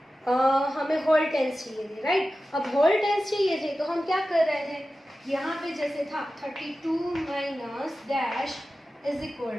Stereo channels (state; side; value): normal; both; correlation 0.94